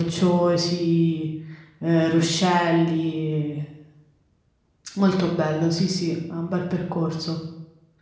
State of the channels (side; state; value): both; identical; correlation 1.00